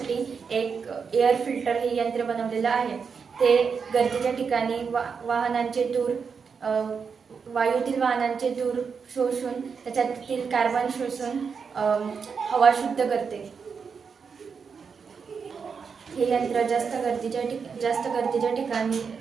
एक एअर फिल्टर हे यंत्र बनवलेलं आहे. ते गरजेच्या ठिकाणी वायूतील वाहनांचे धूर शोषून त्याच्यातील कार्बन शोषून हवा शुद्ध करते. हे यंत्र जास्त गर्दीच्या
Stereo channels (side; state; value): left; quieter; 5.9 dB